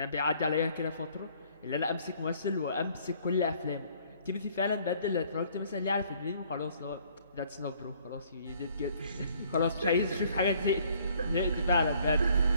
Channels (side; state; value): both; inverted; correlation -0.61